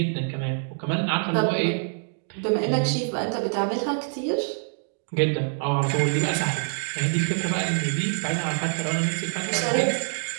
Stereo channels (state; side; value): silent; left; 61 dB below the other